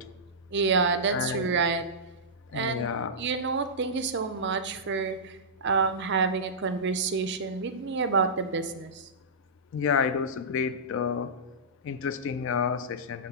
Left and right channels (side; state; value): both; normal; correlation -0.16